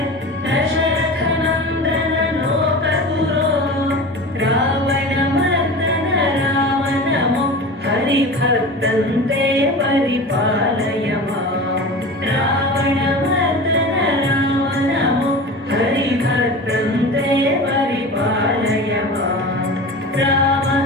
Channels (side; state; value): both; normal; correlation 0.33